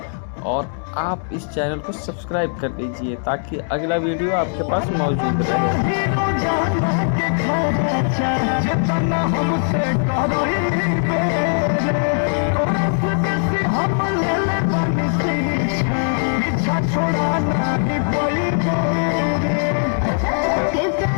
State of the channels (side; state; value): right; silent; 66 dB below the other